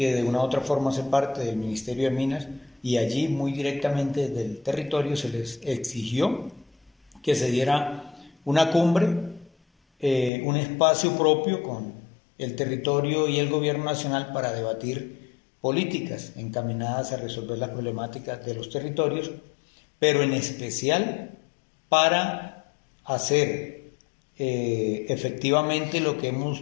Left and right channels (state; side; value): drops out; right; at 10.3 s